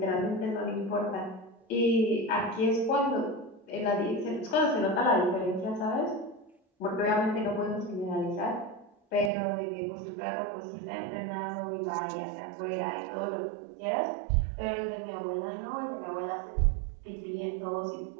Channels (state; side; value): drops out; left; at 9.3 s